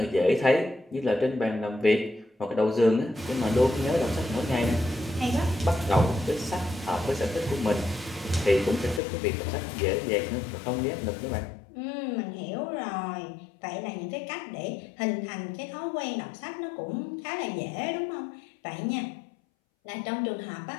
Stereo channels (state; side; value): drops out; right; at 9.0 s